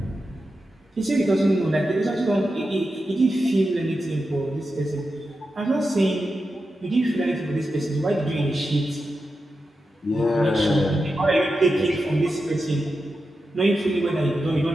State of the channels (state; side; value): normal; both; correlation 0.90